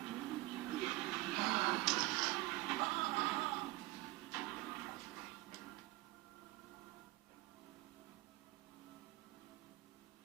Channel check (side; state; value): left; quieter; 20.0 dB